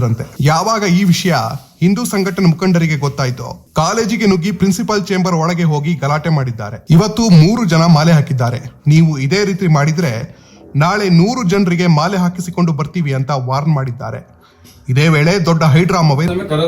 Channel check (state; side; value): identical; both; correlation 1.00